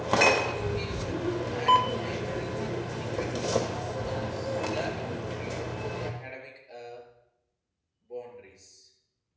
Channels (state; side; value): identical; both; correlation 1.00